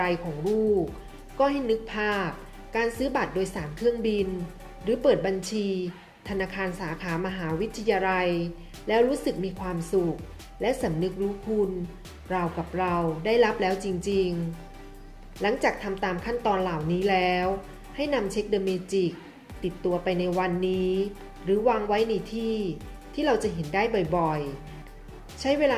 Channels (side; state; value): both; identical; correlation 1.00